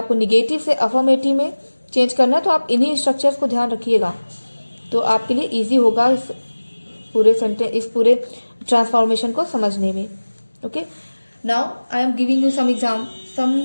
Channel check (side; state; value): both; inverted; correlation -1.00